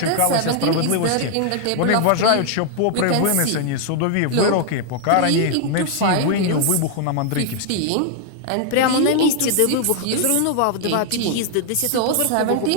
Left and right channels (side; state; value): both; different; correlation 0.00